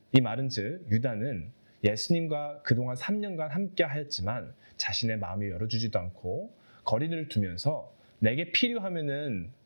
이 말은 즉 유다는 예수님과 그동안 3년간 함께 하였지만 자신의 마음을 열어주지도 않고 거리를 두면서 내게 필요하면은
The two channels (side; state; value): both; inverted; correlation -1.00